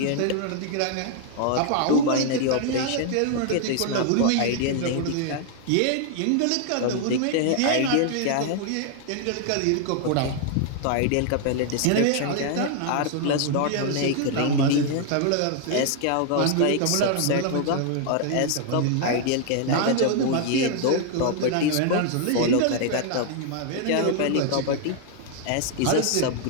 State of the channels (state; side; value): different; both; correlation 0.00